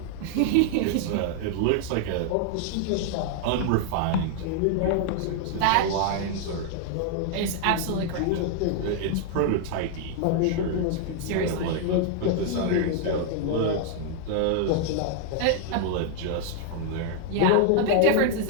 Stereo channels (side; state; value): both; different; correlation 0.00